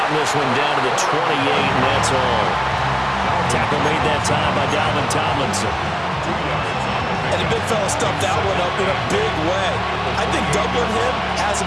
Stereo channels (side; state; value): both; identical; correlation 1.00